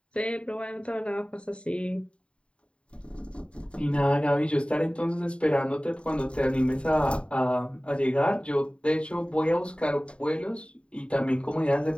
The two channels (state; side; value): late; right; 0.057 ms